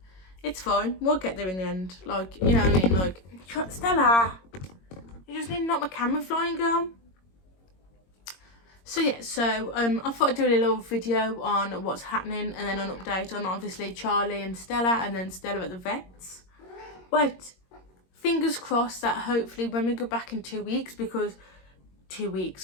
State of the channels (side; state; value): right; late; 22 ms